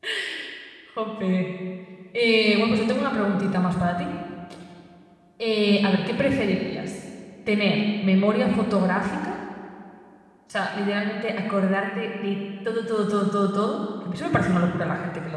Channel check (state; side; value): identical; both; correlation 1.00